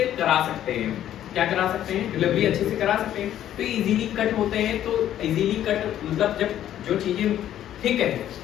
करा सकते हैं। क्या करा सकते हैं? डिलीवरी अच्छे से करा सकते हैं। तो इजीली कट होते हैं। तो इजीली कट मतलब जब जो चीजें ठीक है,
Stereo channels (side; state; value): right; quieter; 11.5 dB